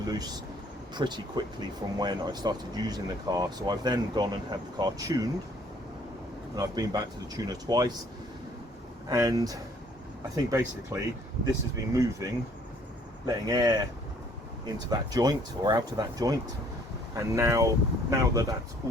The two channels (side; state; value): both; normal; correlation 0.60